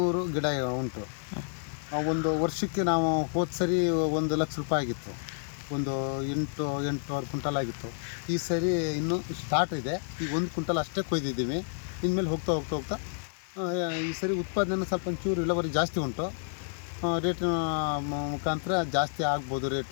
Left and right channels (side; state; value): right; silent; digital silence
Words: ಗಿಡ ಉಂಟು. ಒಂದು ವರ್ಷಕ್ಕೆ ನಾವು ಹೋದ ಸರಿ 1 ಲಕ್ಷ ರೂಪಾಯಿ ಆಗಿತ್ತು. ಒಂದು 8 ಕ್ವಿಂಟಲ್ ಆಗಿತ್ತು. ಈ ಸರಿ ಇನ್ನೂ ಸ್ಟಾರ್ಟ್ ಇದೆ. ಈಗ 1 ಕ್ವಿಂಟಲ್ ಅಷ್ಟೇ ಕೊಯ್ದಿದ್ದೀವಿ. ಇನ್ಮೇಲೆ ಹೋಗ್ತಾ ಈ ಸರಿ ಉತ್ಪಾದನೆ ಸ್ವಲ್ಪ ಒಂಚೂರು ಇಳುವರಿ ಜಾಸ್ತಿ ಉಂಟು. ರೇಟಿನ ಮುಖಾಂತರ ಜಾಸ್ತಿ ಆಗ್ಬೋದು